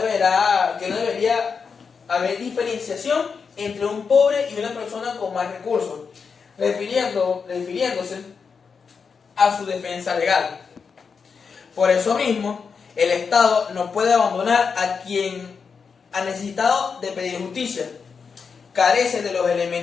haber diferenciación entre un pobre y una persona con más recursos, refiriéndose a su defensa legal. Por eso mismo, el Estado no puede abandonar a quien ha necesitado de pedir justicia. Carece de los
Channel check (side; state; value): right; quieter; 5.7 dB